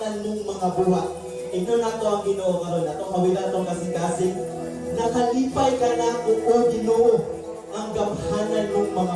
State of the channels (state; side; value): identical; both; correlation 1.00